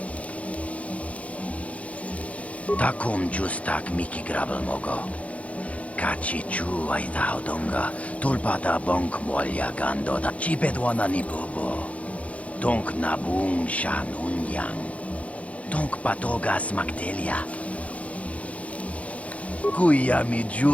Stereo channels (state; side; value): late; right; 0.065 ms